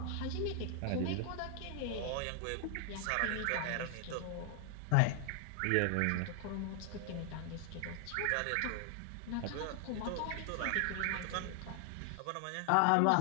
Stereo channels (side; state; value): both; different; correlation 0.00